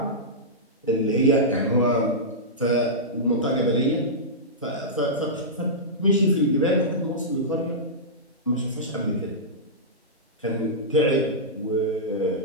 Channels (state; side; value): normal; both; correlation -0.14